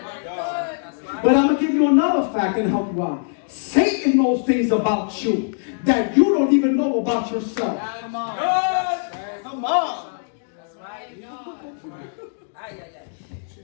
But I'm going to give you another fact and help you out. Satan knows things about you that you don't even know about yourself. Come on. Come on.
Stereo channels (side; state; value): right; silent; digital silence